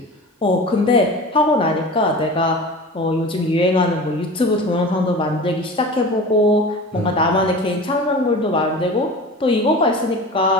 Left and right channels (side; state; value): both; normal; correlation 0.35